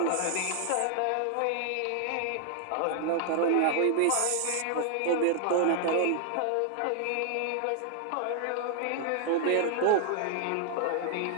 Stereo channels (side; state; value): both; different; correlation 0.00